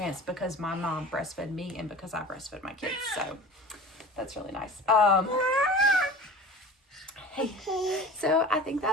because my mom breastfed me and because I breastfed my kids. So that's really nice. Hey. So I think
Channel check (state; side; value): normal; both; correlation 0.38